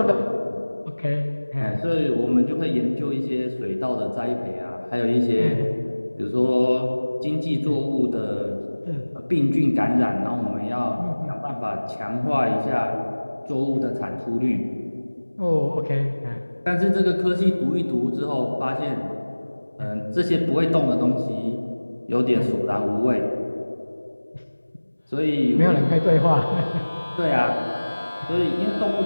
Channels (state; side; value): inverted; both; correlation -1.00